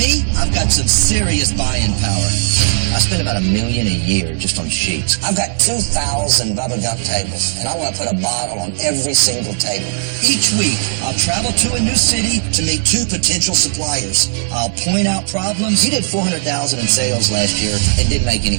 I've got some serious buying power. I spend about $1 million a year just on sheets. I've got 2,000 Bubba Gump tables, and I want to put a bottle on every single table. Each week, I'll travel to a new city to meet 2 potential suppliers. I'll point out problems. You did $400,000 in sales last year and didn't make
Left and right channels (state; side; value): silent; left; digital silence